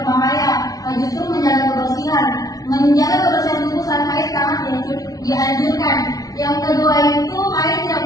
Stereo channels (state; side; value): late; right; 0.18 ms